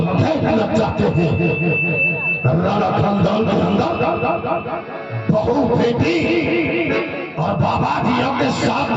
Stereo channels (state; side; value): identical; both; correlation 1.00